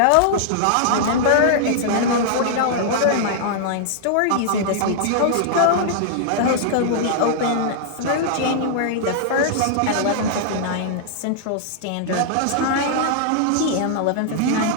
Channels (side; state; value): both; different; correlation -0.01